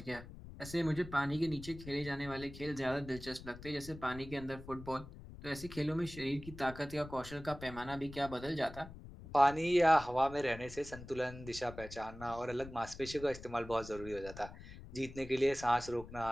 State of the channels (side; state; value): left; noise; rumble, 14 dB below the sound